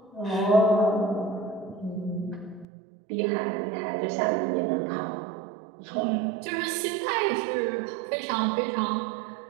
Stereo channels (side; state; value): left; drops out; at 2.7 s